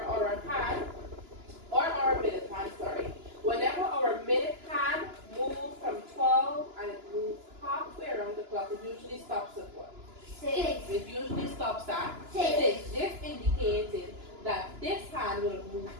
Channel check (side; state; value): left; late; 2.9 ms